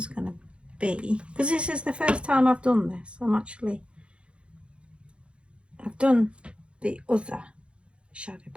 going to be, because this is the first time I've done this. I've done the other shadow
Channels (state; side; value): late; left; 0.058 ms